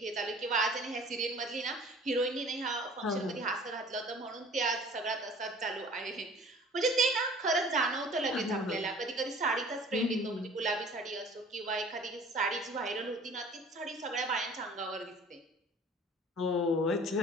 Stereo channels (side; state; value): both; normal; correlation 0.48